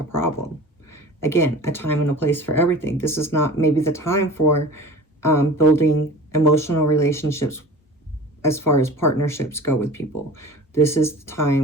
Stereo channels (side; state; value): both; normal; correlation 0.39